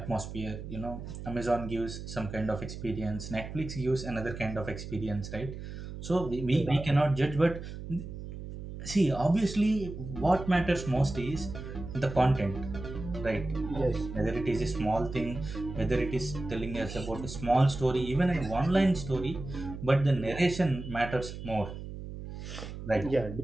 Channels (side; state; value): right; noise; hum, 9 dB below the sound